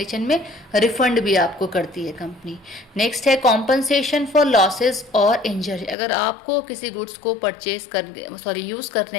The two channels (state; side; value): drops out; right; at 6.0 s